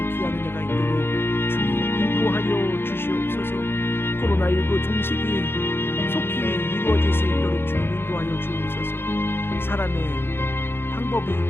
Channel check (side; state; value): right; late; 0.11 ms